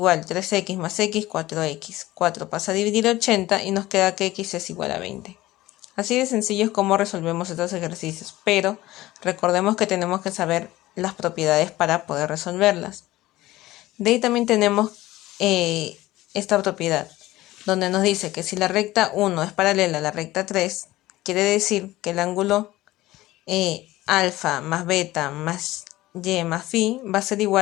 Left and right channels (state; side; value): quieter; right; 17.0 dB